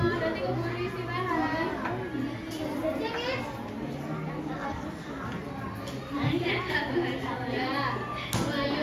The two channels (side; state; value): both; identical; correlation 1.00